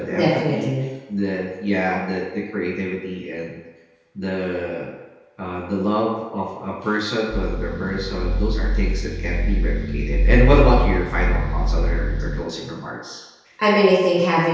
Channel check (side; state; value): both; identical; correlation 1.00